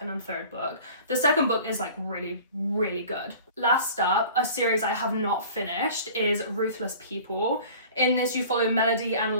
and third book. The second book is like really, really good. Last up, a series I have not finished is Ruthless People. In this, you follow Melody and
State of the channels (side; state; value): both; inverted; correlation -0.44